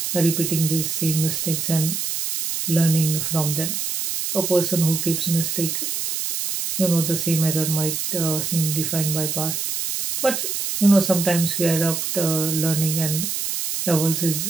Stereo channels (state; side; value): noise; right; hiss, 2 dB below the sound